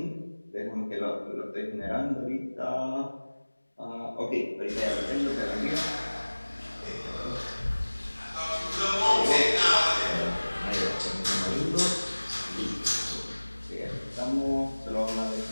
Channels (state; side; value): inverted; both; correlation -1.00